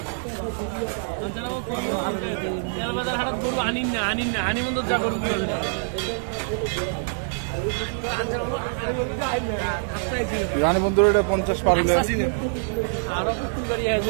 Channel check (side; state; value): left; silent; digital silence